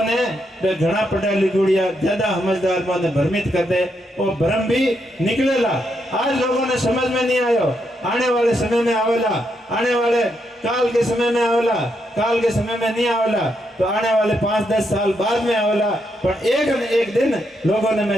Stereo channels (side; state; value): both; normal; correlation 0.80